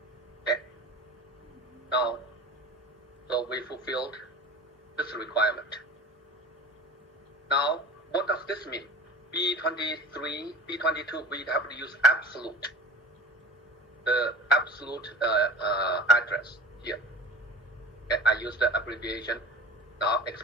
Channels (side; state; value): both; normal; correlation 0.36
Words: Okay, now, so we fulfilled this requirement. Now, what does this mean? B23, B22, we have to use absolute, the absolute address here. Okay, I use the abbreviation. Now,